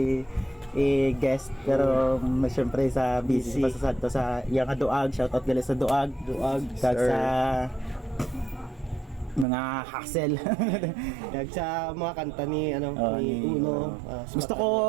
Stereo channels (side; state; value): left; drops out; at 9.5 s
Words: i-guest pero syempre sa busy pa sa Santo sa iyang Duag. Shout out gali sa Duag. Kag sa mga hassle. Kag sa mga kanta ni ni Uno. Gusto ko